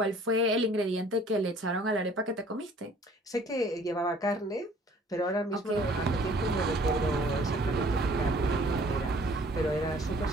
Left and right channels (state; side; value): normal; both; correlation 0.55